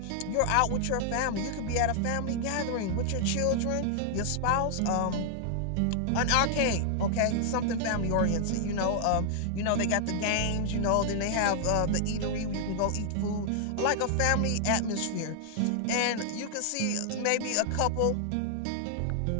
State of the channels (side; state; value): both; different; correlation -0.01